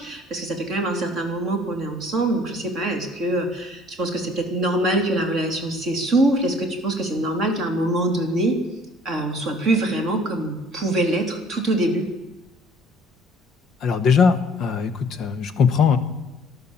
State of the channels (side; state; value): both; normal; correlation 0.55